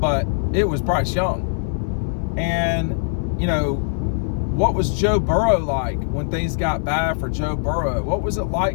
it was Bryce Young. And, what was Joe Burrow like when things got bad for Joe Burrow? What was it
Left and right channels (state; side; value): silent; right; 60 dB below the other